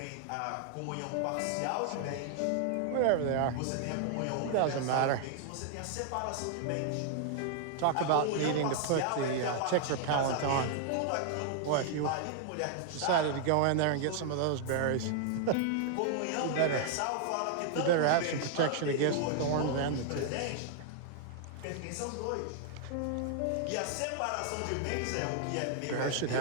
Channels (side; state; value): both; different; correlation -0.01